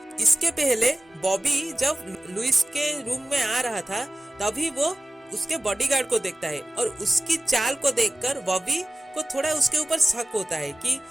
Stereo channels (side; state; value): both; normal; correlation 0.96